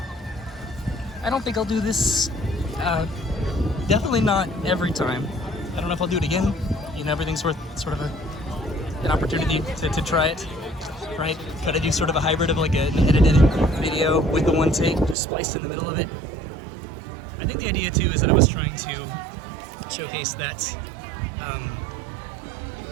I don't think I'll do this, definitely not every time. I don't know if I'll do it again. You know, everything's worth sort of an opportunity to try it, right? Try to do sort of a hybrid of like an edited video with the one take just spliced in the middle of it. I think the idea too is that I was trying to showcase that,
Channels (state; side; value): drops out; left; at 15.2 s